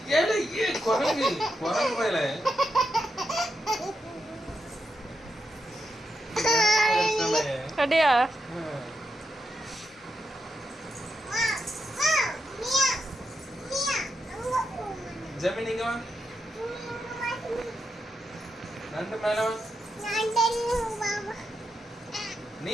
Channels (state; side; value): normal; both; correlation 0.85